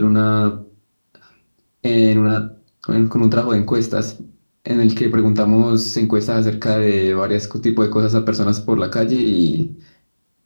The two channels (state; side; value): inverted; both; correlation -1.00